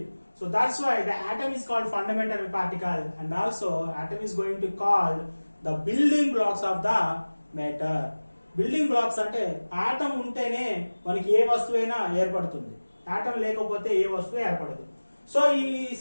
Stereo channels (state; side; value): inverted; both; correlation -1.00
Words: So that's why the atom is called fundamental particle, and also atom is going to call the building blocks of the matter. Building blocks అంటే ఆటం ఉంటేనే మనకి ఏ వస్తువైనా ఏర్పడుతుంది, ఆటం లేకపోతే ఏ వస్తువు ఏర్పడదు. సో ఈ